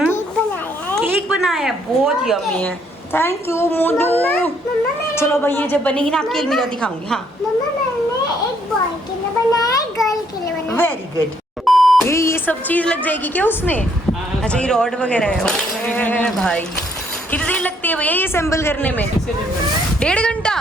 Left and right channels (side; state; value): both; normal; correlation 0.68